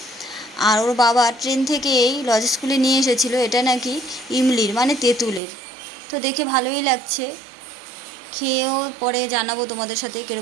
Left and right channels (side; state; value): left; drops out; at 5.4 s